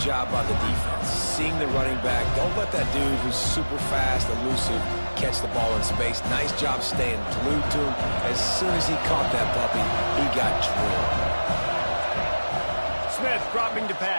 by the defense. Seeing the running back. Don't let that dude who's super fast, elusive, catch the ball in space. Nice job staying glued to him. As soon as he caught that puppy, he got drilled. Smith dropping to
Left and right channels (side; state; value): both; inverted; correlation -1.00